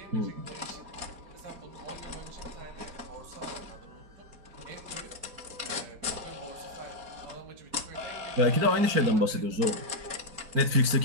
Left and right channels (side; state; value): left; late; 4.4 ms